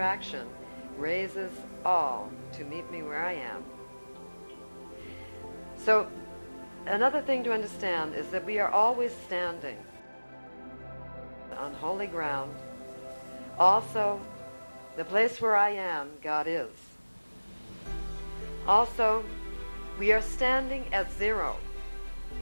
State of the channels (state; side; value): inverted; both; correlation -1.00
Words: raises all to meet me where I am. So another thing to understand is that we are always standing on holy ground. Also, the place where I am, God is. Also, we are standing at zero,